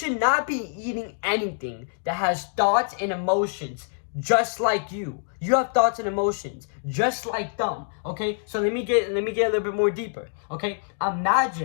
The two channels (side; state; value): right; silent; digital silence